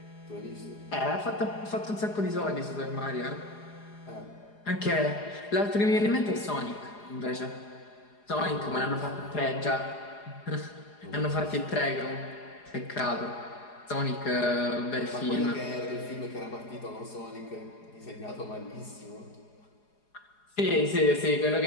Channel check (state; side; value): late; right; 4.8 ms